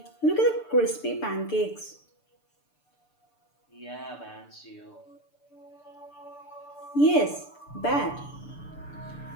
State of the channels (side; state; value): right; late; 6.8 ms